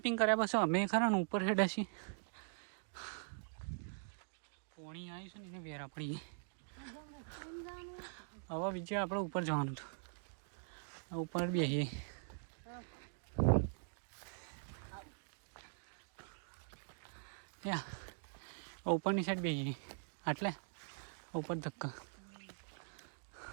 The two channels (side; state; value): left; silent; digital silence